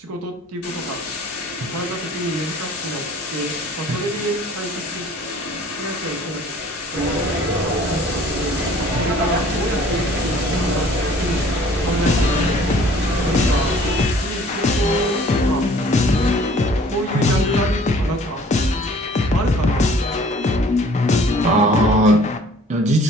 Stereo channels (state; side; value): normal; both; correlation 0.53